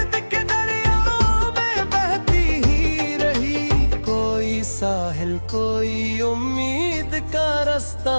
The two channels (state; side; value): inverted; both; correlation -1.00